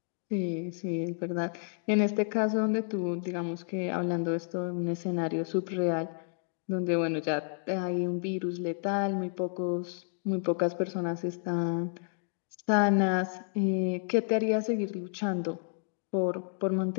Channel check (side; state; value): right; silent; digital silence